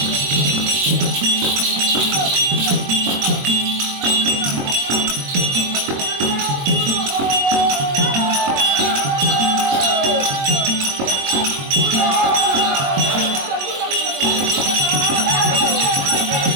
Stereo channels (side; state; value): left; late; 22 ms